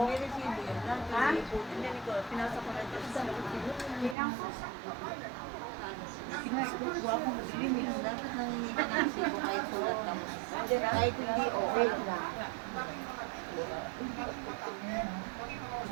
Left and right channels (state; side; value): drops out; left; at 4.2 s